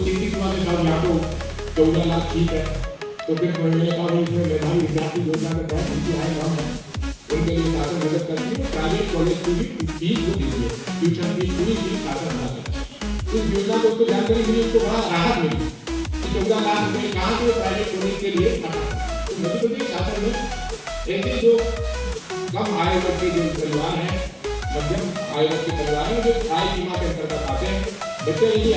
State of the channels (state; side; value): identical; both; correlation 1.00